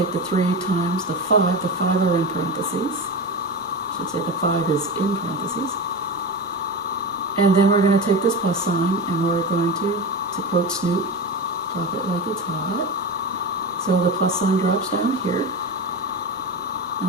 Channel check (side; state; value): both; normal; correlation 0.23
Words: the 3 times the 5. The 5 are in parentheses. I should say the 5 is in parentheses. And then we're going to take this plus sign and we're going to quote Snoop, drop it like it's hot. So the plus sign drops down here.